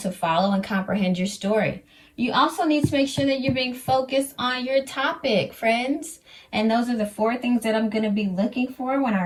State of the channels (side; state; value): both; identical; correlation 1.00